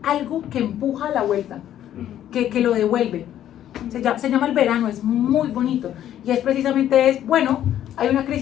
que empuja a la vuelta, que lo devuelve. Se llama El verano, es muy bonito. Y es precisamente, bueno, hay una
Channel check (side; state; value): right; quieter; 11.3 dB